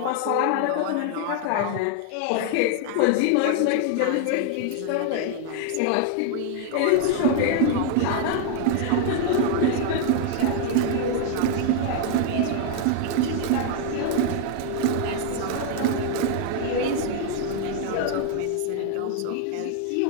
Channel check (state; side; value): different; both; correlation 0.00